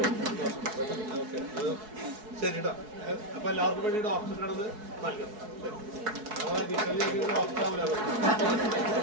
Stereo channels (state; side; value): late; left; 4.7 ms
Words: ശരിട്ടോ. അപ്പൊ എല്ലാവർക്കും വേണ്ടി ഡോക്ടറിനാണത് നൽകണം. ഡോക്ടർ ആവില്ല.